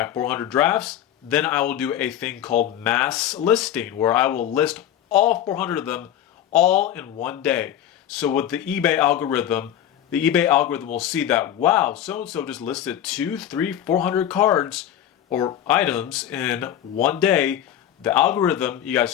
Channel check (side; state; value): right; quieter; 10.9 dB